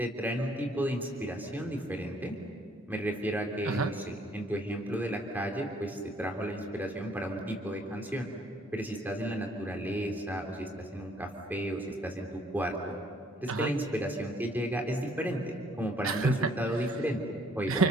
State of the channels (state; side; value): normal; both; correlation 0.63